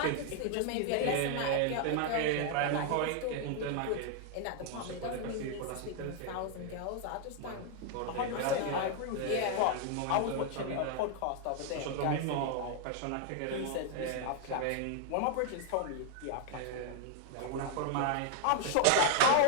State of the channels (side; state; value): both; different; correlation 0.00